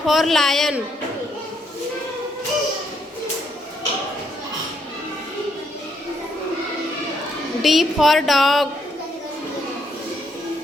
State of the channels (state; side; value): normal; both; correlation 0.74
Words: lion. D for dog.